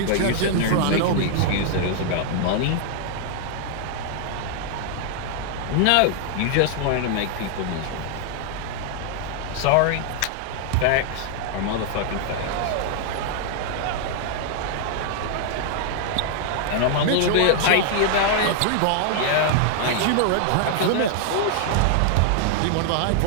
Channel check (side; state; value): both; different; correlation 0.00